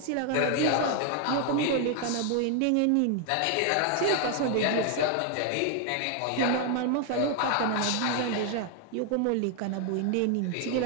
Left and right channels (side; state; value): both; different; correlation 0.00